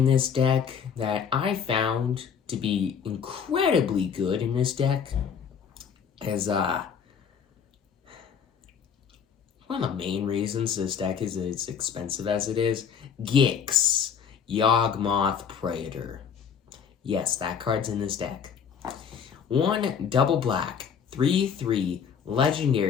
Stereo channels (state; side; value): quieter; right; 7.2 dB